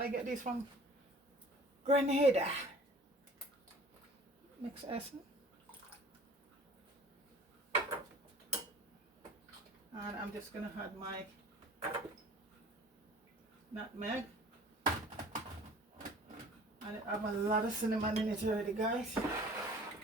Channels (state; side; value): normal; both; correlation 0.47